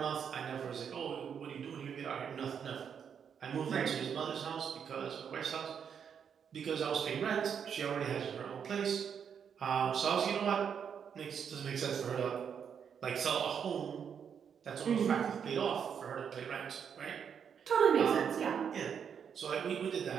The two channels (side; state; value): left; quieter; 7.5 dB